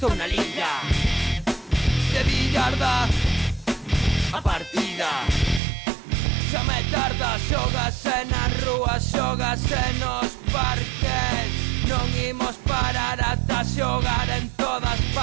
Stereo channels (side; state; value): left; drops out; at 5.6 s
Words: na liga de billarda. A partida xa me tarda, xógase nas rúas, xógase nos parques. Non imos parar ata xogar en todas